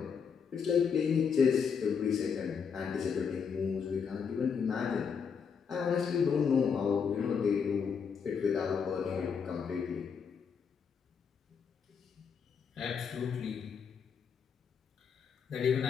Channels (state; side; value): quieter; right; 6.5 dB